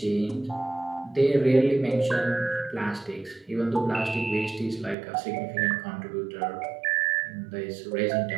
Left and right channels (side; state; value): left; drops out; at 5.0 s